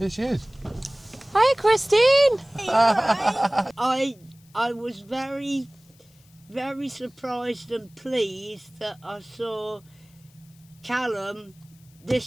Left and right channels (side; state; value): left; noise; hiss, 30 dB below the sound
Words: she is. Hi, Christine. I was very surprised and pleased that I saw Callum